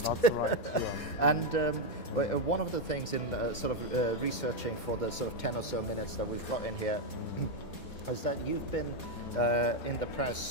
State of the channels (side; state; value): right; late; 4.2 ms